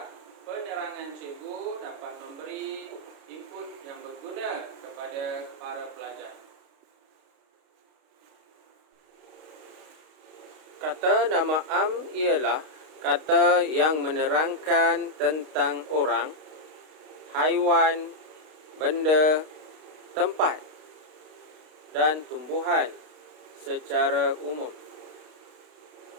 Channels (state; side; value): late; left; 32 ms